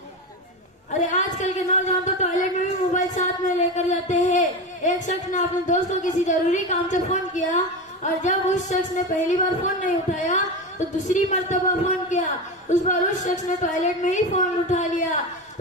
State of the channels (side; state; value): both; normal; correlation 0.21